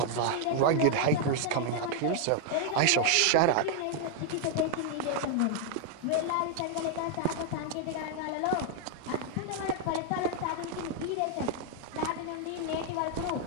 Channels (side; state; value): both; different; correlation 0.00